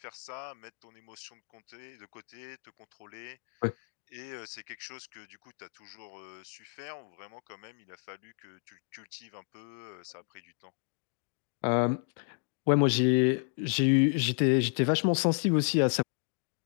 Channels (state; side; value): silent; right; 56 dB below the other